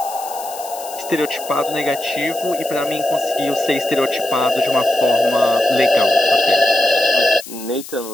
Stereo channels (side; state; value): left; noise; hiss, 14 dB below the sound